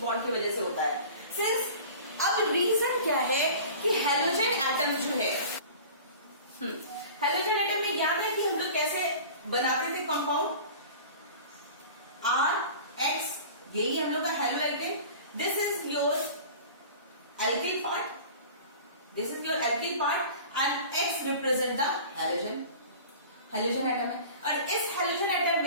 bond की वजह से होता है. सिंस अब रीजन क्या है कि हेलोजन एटम जो है, हेलोजन एटम में याद है कि हम लोग कैसे बनाते थे कंपाउंड, RX, यही हम लोग का haloalkane. This is your alkyl part, this is your alkyl part and X represent the halogen atom है. और इस हेलोजन एटम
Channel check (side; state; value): both; inverted; correlation -0.40